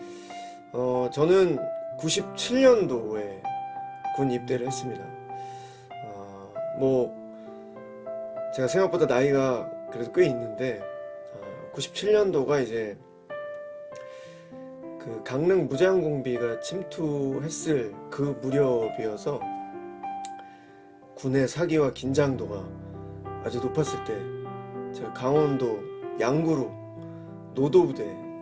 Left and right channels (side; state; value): both; identical; correlation 1.00